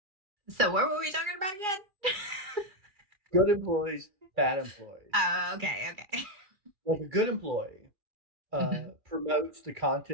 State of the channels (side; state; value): left; late; 2.4 ms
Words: So what were we talking about again? Good employees, bad employees. Oh, okay. Like a good employee promotes the